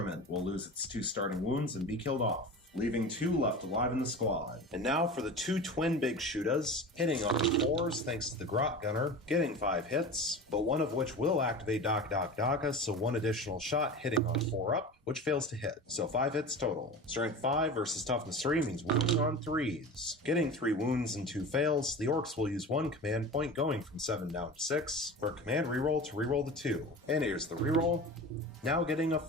will lose its 2 starting wounds and be killed off. leaving 2 left alive in the squad. And now for the 2 twin big shootas, hitting on 4s thanks to the Grot Gunner, getting 5 hits, but one of which will activate Daka, so 1 additional shot hitting on 4 up, which fails to hit. So 5 hits total. Strength 5 versus Toughness 3 means wounding on 3s. Getting 3 wounds and 2 fails, the Orks will use 1 command point going from 7 down to 6 for a command reroll to reroll the 2. And here's the reroll. Now getting a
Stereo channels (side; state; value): both; normal; correlation 0.33